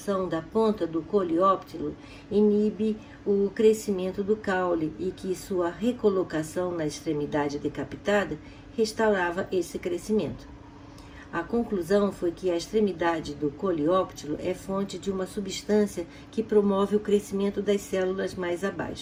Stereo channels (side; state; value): both; identical; correlation 1.00